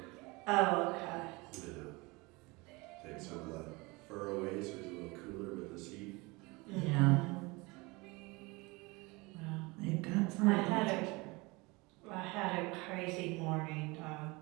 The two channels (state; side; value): quieter; left; 24.9 dB